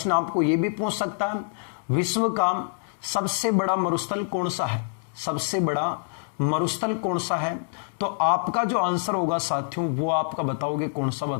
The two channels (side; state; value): right; silent; digital silence